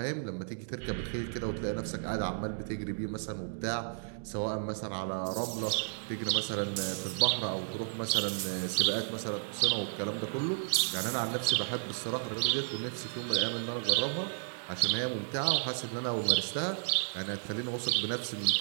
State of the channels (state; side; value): silent; left; digital silence